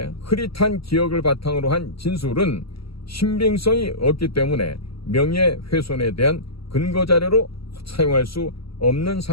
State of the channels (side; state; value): right; late; 0.75 ms